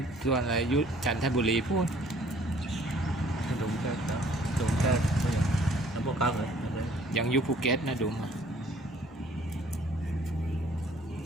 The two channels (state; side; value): normal; both; correlation 0.58